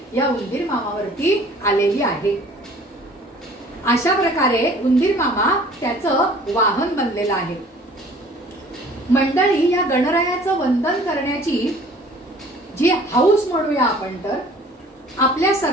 या उंदीर मामावरती आलेली आहे. अशा प्रकारे उंदीर मामा त्याचं वाहन बनलेलं आहे. मंडळी, या गणरायाचं वंदन करण्याची जी हौस म्हणूया आपण तर आपल्या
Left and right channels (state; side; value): normal; both; correlation 0.51